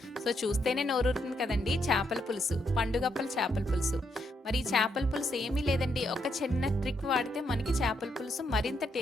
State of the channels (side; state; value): both; normal; correlation 0.77